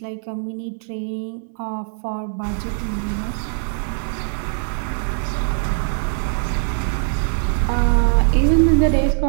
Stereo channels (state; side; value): silent; left; digital silence